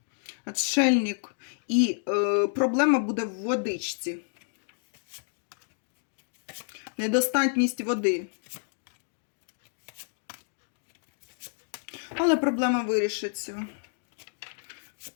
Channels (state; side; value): silent; right; digital silence